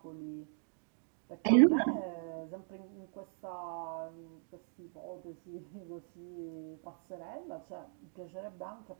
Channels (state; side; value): silent; left; 52 dB below the other